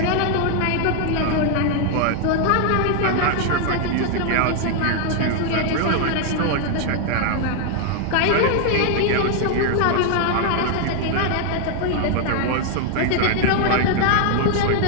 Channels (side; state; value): both; different; correlation 0.00